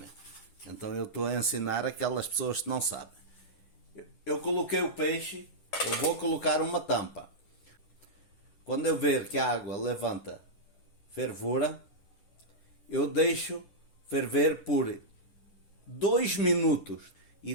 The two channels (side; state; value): right; late; 10 ms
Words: Então eu estou a ensinar aquelas pessoas que não sabem. Eu coloquei o peixe, eu vou colocar uma tampa. Quando eu ver que a água levanta fervura, eu deixo ferver por 2 minutos e